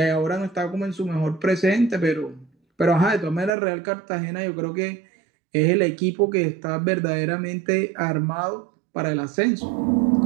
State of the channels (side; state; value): left; drops out; at 3.5 s